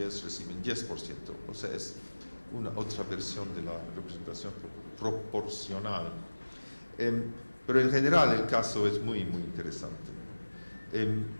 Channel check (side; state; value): both; inverted; correlation -1.00